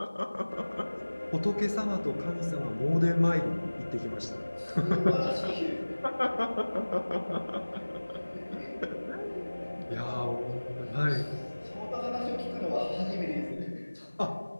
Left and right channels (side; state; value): both; inverted; correlation -1.00